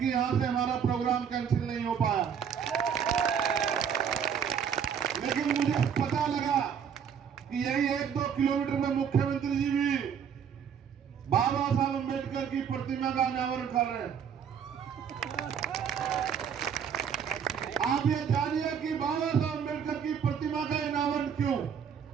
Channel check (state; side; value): quieter; left; 7.7 dB